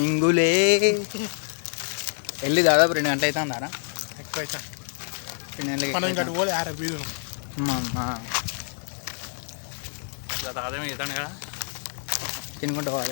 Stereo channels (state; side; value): silent; right; 61 dB below the other